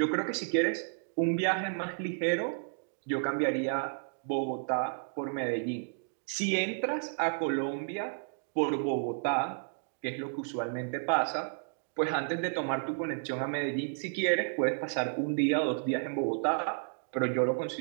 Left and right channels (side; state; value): left; silent; digital silence